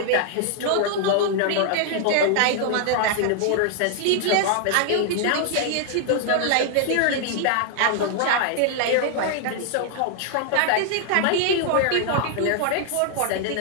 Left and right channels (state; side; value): different; both; correlation 0.00